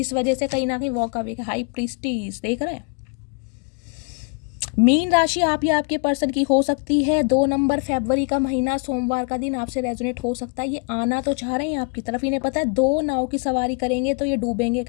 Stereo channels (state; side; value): quieter; right; 35.2 dB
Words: वजह से कहीं ना कहीं वॉक अवे। हाई प्रीस्टीज देख रहे हैं। मीन राशि आप या आपके पर्सन की हो सकती है। 2 नंबर फरवरी का महीना सोमवार का दिन आपसे रेजोनेट हो सकता है। ये आना तो चाह रहे हैं आपकी तरफ, इन्हें पता है 2 नाव की सवारी करेंगे तो ये डूबेंगे